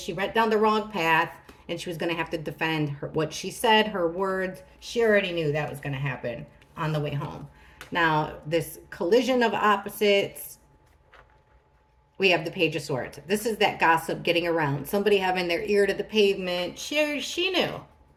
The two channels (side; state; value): both; identical; correlation 1.00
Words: went down the wrong path, and she was going to have to defend what she said, her words. She already knew that was going to happen on the way home. Now, this collision of opposites, we have the Page of Swords. This is that gossip getting around. Somebody having their ear to the pavement. She knew